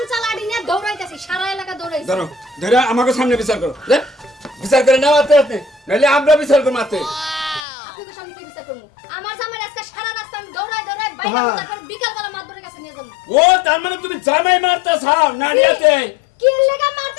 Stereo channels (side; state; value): right; drops out; at 7.6 s